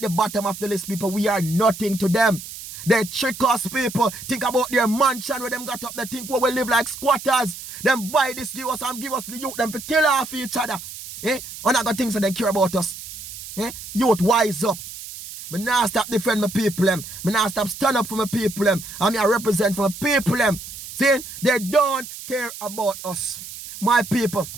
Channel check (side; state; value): right; noise; hiss, 12 dB below the sound